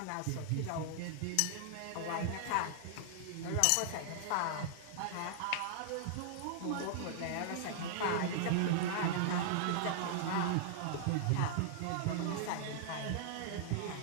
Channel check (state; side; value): different; both; correlation -0.01